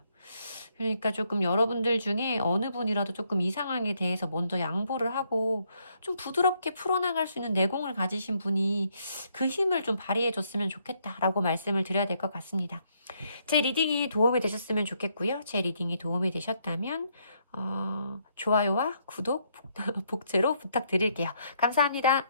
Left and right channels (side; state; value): both; inverted; correlation -0.72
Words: 그러니까 조금 여러분들 중에 어느 분이라도 조금 이 상황에 대해서 먼저 양보를 하고 좀 부드럽게 풀어나갈 수 있는 내공을 가지신 분이 그 힘을 좀 발휘해 줬으면 좋겠다라고 말씀을 드려야 될 것 같습니다. 제 리딩이 도움이 되셨으면 좋겠고요. 제 리딩이 도움이 되셨다면 좋아요와 구독, 복제로 부탁드릴게요. 감사합니다.